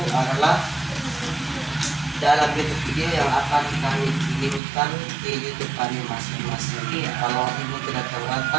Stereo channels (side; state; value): left; drops out; at 4.6 s